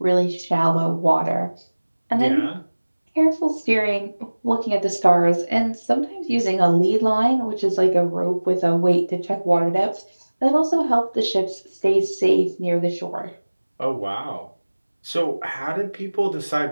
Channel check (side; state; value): both; inverted; correlation -1.00